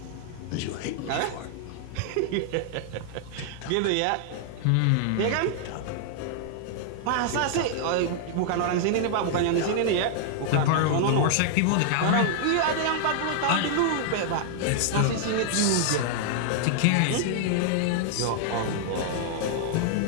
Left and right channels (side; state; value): both; different; correlation -0.01